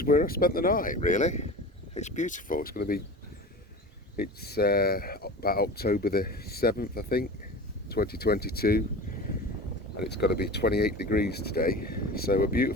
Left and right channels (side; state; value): both; normal; correlation 0.34